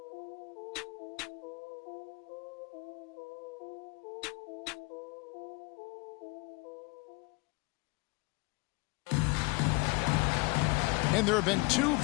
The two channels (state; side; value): quieter; right; 26.8 dB